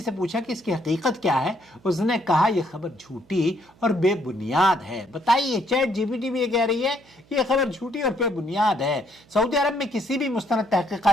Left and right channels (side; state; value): right; noise; hum, 29 dB below the sound